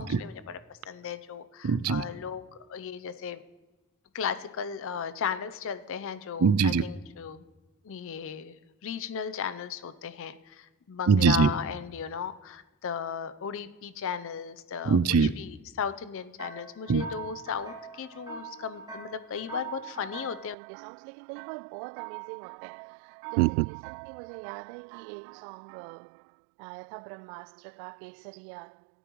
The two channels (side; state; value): left; drops out; at 20.6 s